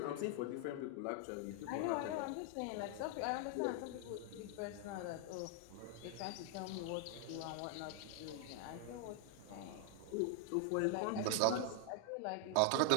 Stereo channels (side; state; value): both; different; correlation 0.00